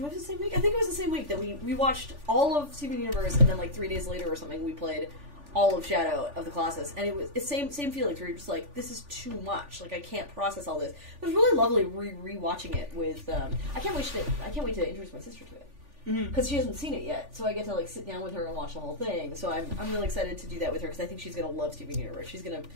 it the same week? I think it was the same week that we watched all of Steven Universe, and then like 3 days later or something, we played all of Shadow of the Colossus, and it's same feelings where you're just like, this is too much. Like, I can't process all this. It was really lovely re-watching it with. I can't wait to introduce my sister to it because she hasn't seen it yet, so I get to like sit down with her and watch the whole thing. So I'm really excited to do that with her because I think she's gonna love Steven Universe. She's gonna,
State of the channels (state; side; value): late; left; 3.4 ms